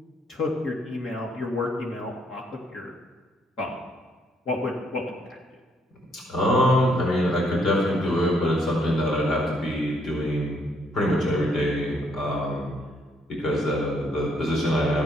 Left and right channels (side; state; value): both; normal; correlation 0.71